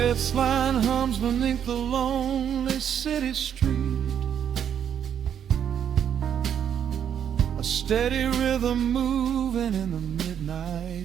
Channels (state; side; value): quieter; left; 8.8 dB